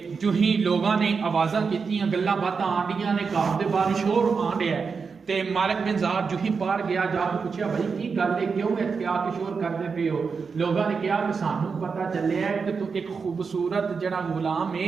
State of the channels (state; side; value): quieter; left; 5.3 dB